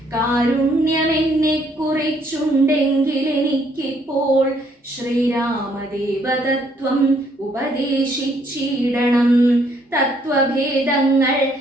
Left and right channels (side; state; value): both; normal; correlation 0.68